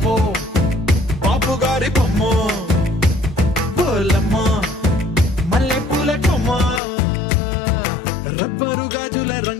బాపు గారి బొమ్మ, పోలమ్మ మల్లె పూల కొమ్మ, రబ్బరు గాజుల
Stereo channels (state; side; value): drops out; right; at 6.8 s